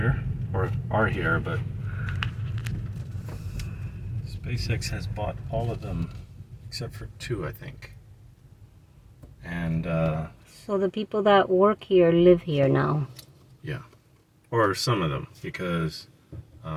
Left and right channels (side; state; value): both; identical; correlation 1.00